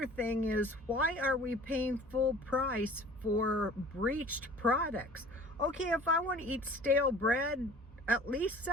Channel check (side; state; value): both; normal; correlation 0.46